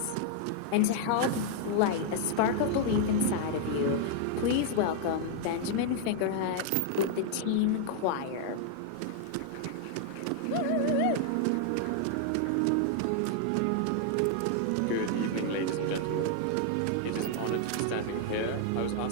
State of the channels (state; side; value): different; both; correlation 0.00